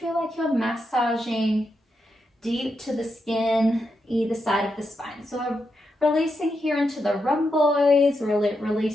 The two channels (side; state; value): both; normal; correlation 0.85